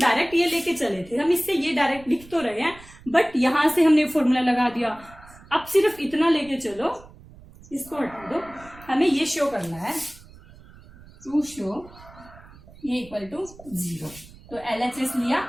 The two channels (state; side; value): noise; right; rumble, 21 dB below the sound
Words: ये लेके चले थे, हम इससे ये डायरेक्ट लिख तो रहे हैं, बट यहां से हमने फॉर्मूला लगा दिया। अब सिर्फ इतना लेके चलो, इसको हटा दो, हमें ये शो करना है, टू शो ये इक्वल टू 0, तो LHS लिया